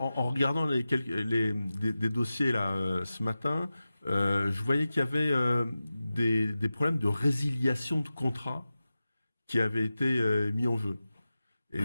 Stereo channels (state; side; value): inverted; both; correlation -0.94